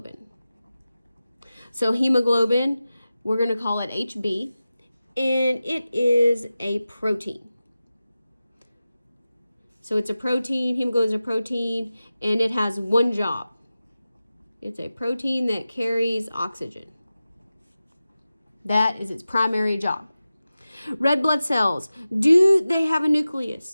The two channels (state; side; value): inverted; both; correlation -0.94